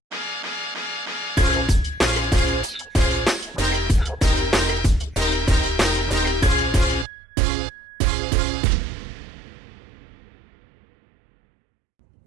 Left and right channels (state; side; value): drops out; left; at 7.1 s